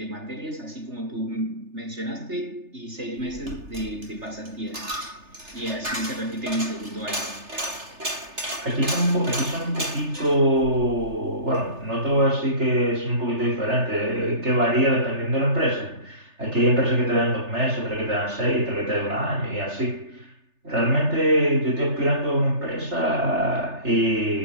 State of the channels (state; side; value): late; left; 3.3 ms